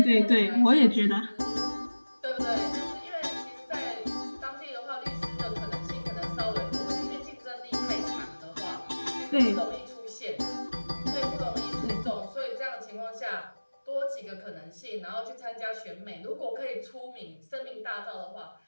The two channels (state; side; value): inverted; both; correlation -1.00